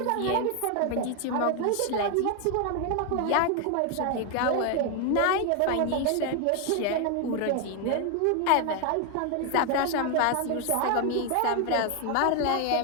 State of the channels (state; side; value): different; both; correlation 0.01